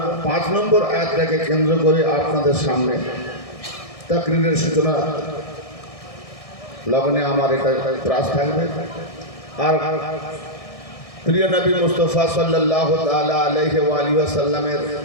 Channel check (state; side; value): late; right; 1.6 ms